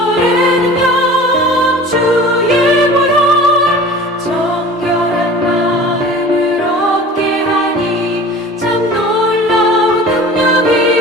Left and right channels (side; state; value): both; normal; correlation 0.41